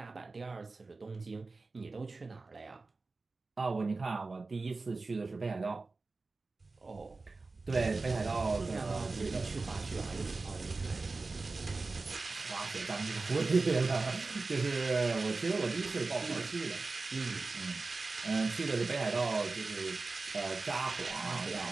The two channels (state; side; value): quieter; left; 3.7 dB